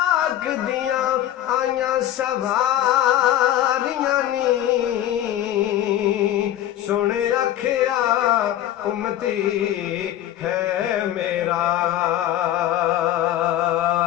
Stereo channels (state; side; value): quieter; right; 12.6 dB